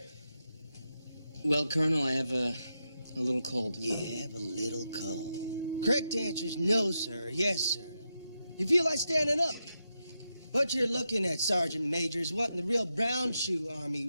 Well, Colonel, I have a little cold. You have a little cold. Correct answer is no, sir. Yes, sir. You feel like standing up. What you're looking at, Sergeant Major, is what in the real brown shoe army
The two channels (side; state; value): both; inverted; correlation -0.86